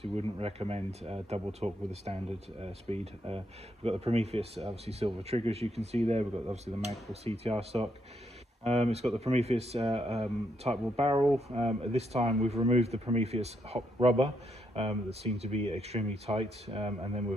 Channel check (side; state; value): both; normal; correlation 0.77